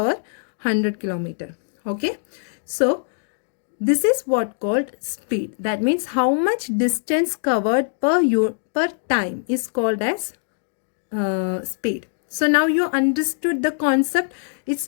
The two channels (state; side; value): silent; right; digital silence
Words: 100 kilometer. Okay. So, this is what called speed. That means how much distance covered per time is called as speed. So now you understood the concept. It